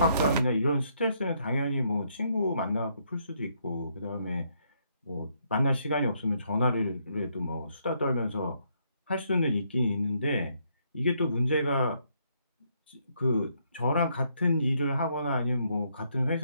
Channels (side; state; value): both; inverted; correlation -0.73